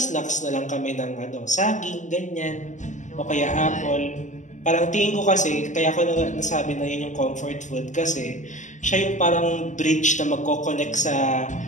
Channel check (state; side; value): late; right; 0.36 ms